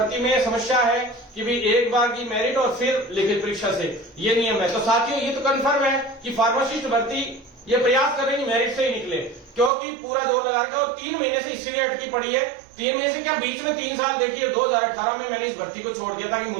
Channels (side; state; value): left; drops out; at 9.7 s